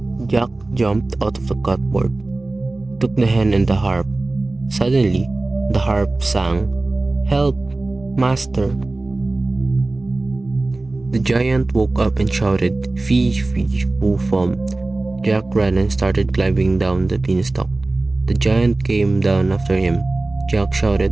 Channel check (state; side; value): quieter; left; 3.0 dB